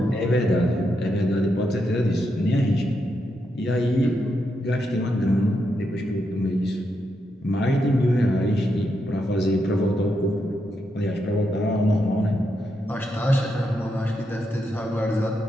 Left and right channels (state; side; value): normal; both; correlation 0.82